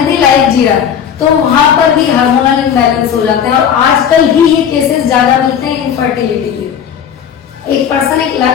लाइफ जी रहा है, तो वहां पर भी हार्मोनल इम्बैलेंस हो जाते हैं। और आजकल ही ये केसेस ज्यादा मिलते हैं इनफर्टिलिटी के। एक पर्सन एक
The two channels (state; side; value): quieter; right; 8.3 dB